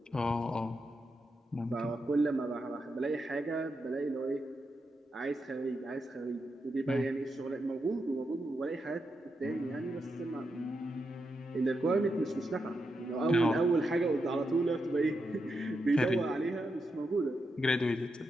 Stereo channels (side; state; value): both; normal; correlation 0.85